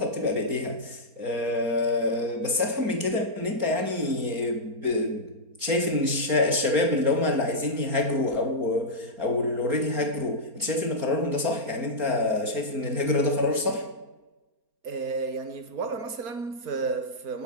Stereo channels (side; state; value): left; late; 4.3 ms